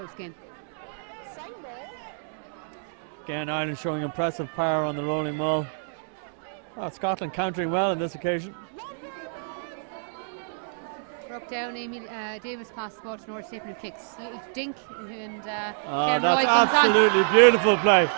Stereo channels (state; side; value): silent; left; digital silence